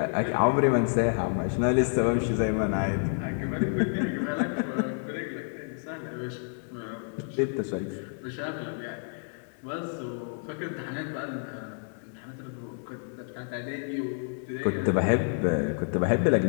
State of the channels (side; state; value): right; silent; 59 dB below the other